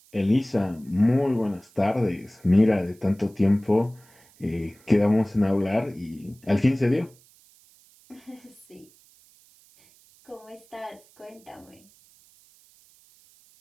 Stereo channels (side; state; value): right; noise; hiss, 29 dB below the sound